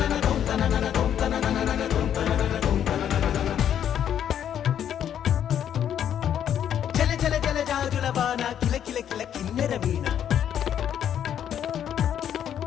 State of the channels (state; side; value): quieter; right; 9.6 dB